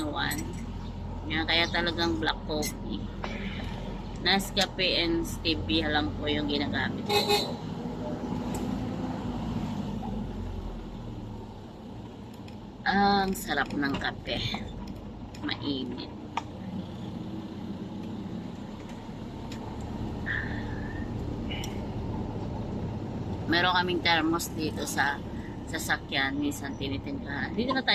Yan, kaya talagang black coffee. Nescafe and stevia lang po yung ginagamit ko. Ang sarap ng kape. Mainit. Meron kaming thermos dito sa sasakyan. Minsan tinitimplahan. Dito na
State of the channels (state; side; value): identical; both; correlation 1.00